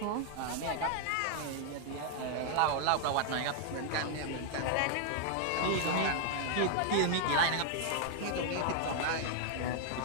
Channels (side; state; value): both; different; correlation 0.00